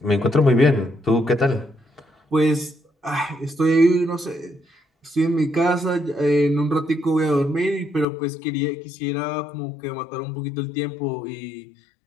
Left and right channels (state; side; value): drops out; right; at 8.1 s